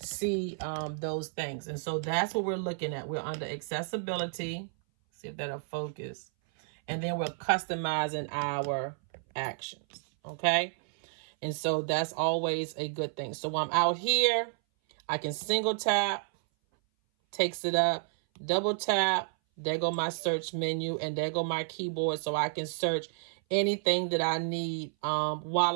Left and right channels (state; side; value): silent; left; 57 dB below the other